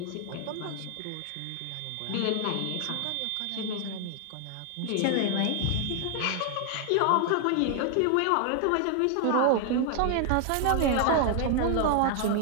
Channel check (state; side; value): different; both; correlation 0.00